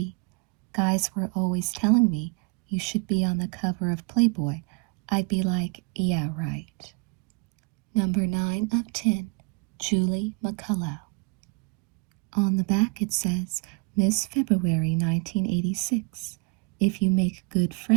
Guys were always telling me, you should be on the cover of Playboy. I'd be like, yeah, right. Number 9 of 10, Julie McCullough. On the back it says, Miss February 1986. If you make good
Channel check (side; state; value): left; quieter; 31.5 dB